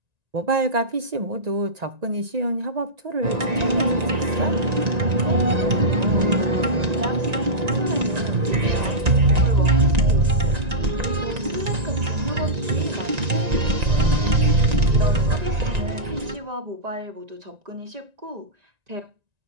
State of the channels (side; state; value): left; late; 1.9 ms